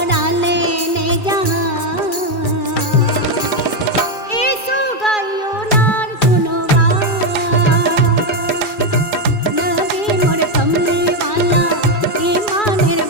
लेने जहाँ ऐसो गायो नार गुनवान। नबी मोर कमली वाला ईमानेर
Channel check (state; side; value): late; right; 2.4 ms